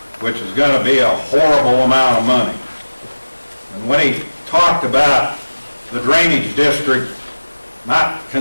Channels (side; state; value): both; inverted; correlation -1.00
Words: which is going to be a horrible amount of money. And when he talked about the drainage district not